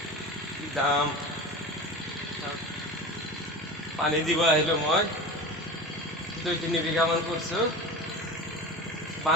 কি দাম। পানী দিব আহিলোঁ মই, 2-3 বিঘামান কৰিছোঁ।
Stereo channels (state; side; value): normal; both; correlation 0.31